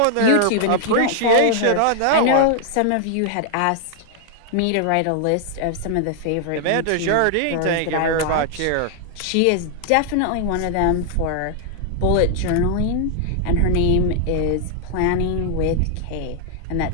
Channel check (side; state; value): both; different; correlation 0.00